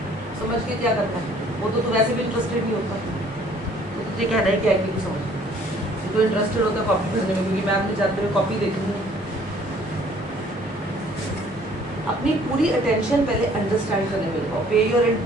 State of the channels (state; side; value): normal; both; correlation 0.58